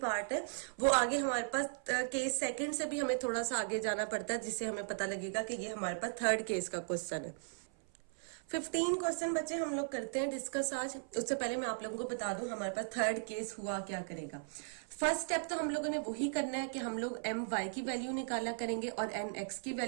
है। वो आगे हमारे पास केस सेकंड से भी हमें थोड़ा सा आगे जाना पड़ता है, जिससे हमें पता लगेगा कि ये हमारे पास थर्ड केस का क्वेश्चन है। 15 क्वेश्चन बच्चे हम लोग करते हैं डिस्कस आज। उससे पहले मैं आप लोगों को बता दूं हमारे पास थर्ड केस हुआ क्या करेगा। फर्स्ट स्टेप तो हम लोगों ने वही करना है कि हम लोग एम वाई की वैल्यू निकाला करेंगे और एन एक्स की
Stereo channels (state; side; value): silent; left; 53 dB below the other